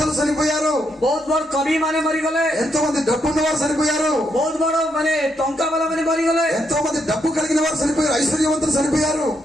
చనిపోయారు, ବହୁତ ବଡ କବି ମାନେ ମରିଗଲେ, ఎంతో మంది డబ్బున్న వారు చనిపోయారు, ବହୁତ ବଡ ମାନେ ଟଙ୍କା ବାଲା ମାନେ ମରିଗଲେ, ఎంతో మంది డబ్బు కలిగిన వారు చనిపోయారు, ఐశ్వర్యవంతులు చనిపోయారు.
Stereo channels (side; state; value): both; normal; correlation 0.78